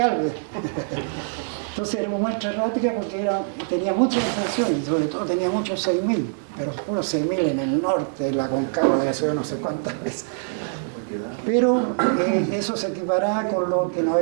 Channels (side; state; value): left; silent; digital silence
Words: Entonces era una muestra errática porque tenía muchas ascensiones, sobre todo tenía muchos 6.000, pero puros 6.000 en el norte, en la Concagua, la que subió no sé cuántas veces. Pero eso se equiparaba con lo que no